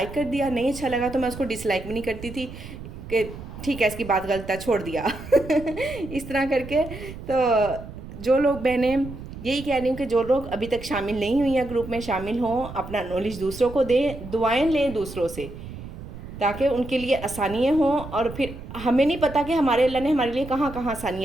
कर दिया, नहीं अच्छा लगा तो मैं उसको डिसलाइक भी नहीं करती थी कि ठीक है इसकी बात गलत है, छोड़ दिया इस तरह करके। तो जो लोग बहनें, यही कह रही हूँ कि जो लोग अभी तक शामिल नहीं हुई हैं ग्रुप में, शामिल हों, अपना नॉलेज दूसरों को दें, दुआएं लें दूसरों से, ताकि उनके लिए आसानियाँ हों। और फिर हमें नहीं पता कि हमारे अल्लाह ने हमारे लिए कहाँ कहाँ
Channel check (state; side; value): noise; right; rumble, 12 dB below the sound